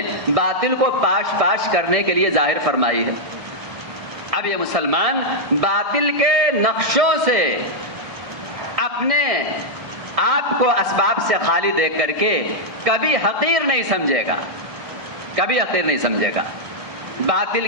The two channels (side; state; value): left; late; 1.6 ms